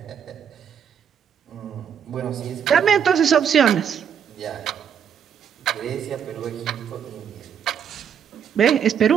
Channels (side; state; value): left; quieter; 8.1 dB